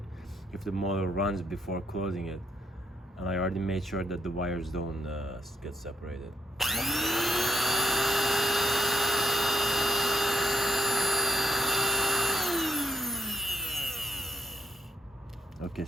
if the motor runs before closing it, and I already made sure that the wires don't get separated. Okay,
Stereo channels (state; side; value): normal; both; correlation 0.72